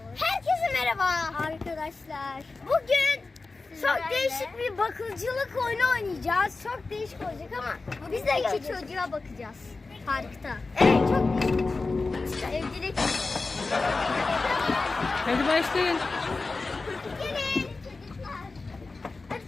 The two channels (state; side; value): quieter; right; 3.7 dB